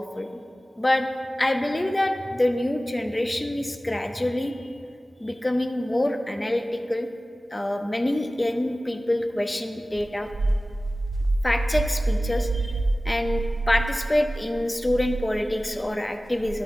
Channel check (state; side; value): normal; both; correlation 0.97